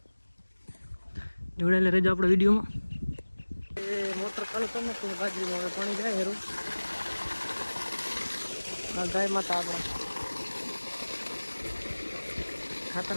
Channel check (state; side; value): inverted; both; correlation -1.00